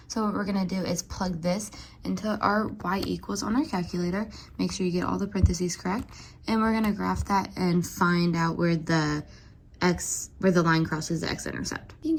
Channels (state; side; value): identical; both; correlation 1.00